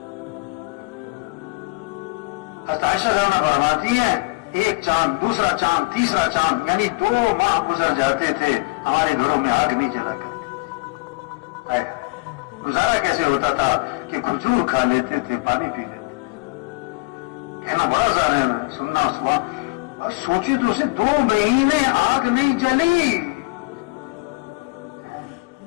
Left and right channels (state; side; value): quieter; right; 26.0 dB